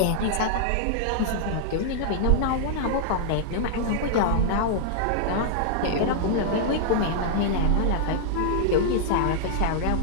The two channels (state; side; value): different; both; correlation -0.01